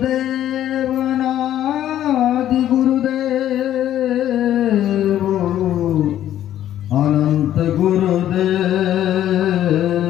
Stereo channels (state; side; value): quieter; right; 11.8 dB